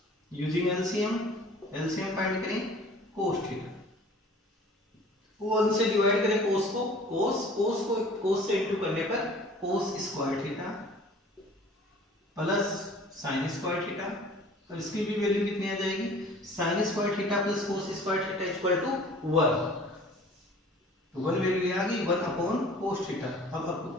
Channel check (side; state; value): both; normal; correlation 0.48